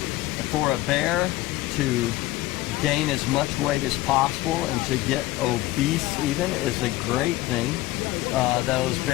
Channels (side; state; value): right; quieter; 17.3 dB